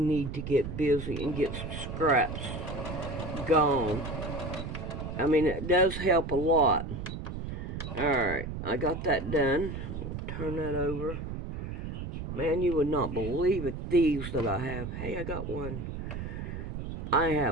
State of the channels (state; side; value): noise; right; rumble, 6 dB below the sound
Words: to get busy and get some scraps gone. I mean, it does help a lot. Alright, I got that done. I'll turn that over. Man, you would not believe it, these that I have. Hey, I got one. I